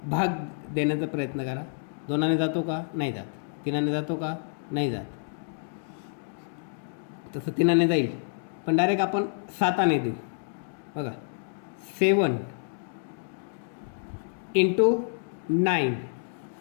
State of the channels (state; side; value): silent; right; digital silence